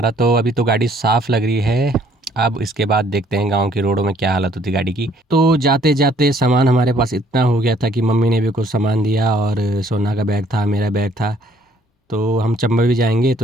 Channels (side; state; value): both; normal; correlation 0.63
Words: तो अभी तो गाड़ी साफ़ लग रही है। अब इसके बाद देखते हैं गांव की रोडों में क्या हालत होती गाड़ी की। तो जाते जाते सामान हमारे पास इतना हो गया था कि मम्मी ने भी कुछ सामान दिया, और सोना का बैग था, मेरा बैग था। तो हम चंबा भी जाएंगे,